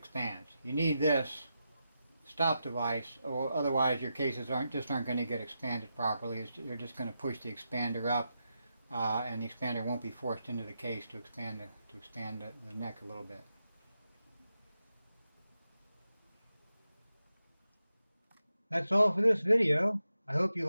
You need this stop device, or otherwise your cases aren't going to get expanded properly. They're just going to push the expander up, and the expander won't be forced into the case to expand the neck a little bit. That's all for this video. I hope you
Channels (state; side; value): inverted; both; correlation -0.87